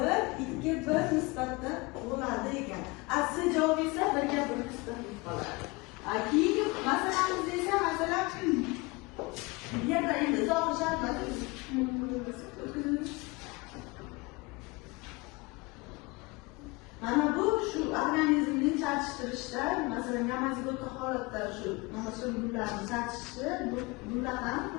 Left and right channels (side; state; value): right; quieter; 25.3 dB